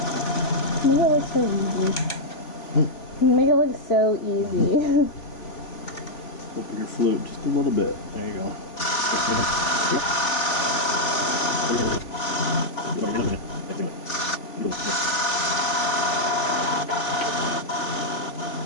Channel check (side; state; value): right; late; 3.5 ms